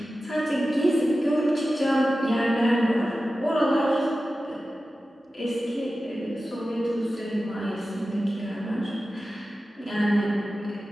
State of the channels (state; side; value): normal; both; correlation 0.94